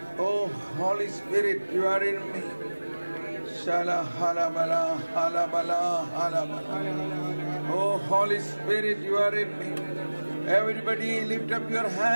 Oh, Holy Spirit, you are in me. Shala halabala, halabala, halabala. Oh, Holy Spirit, you are in me. Everybody lift up your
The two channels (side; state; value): both; inverted; correlation -1.00